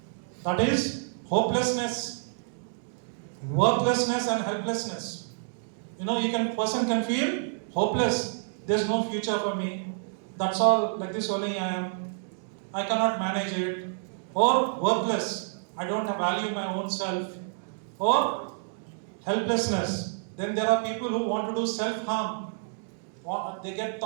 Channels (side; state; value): left; silent; digital silence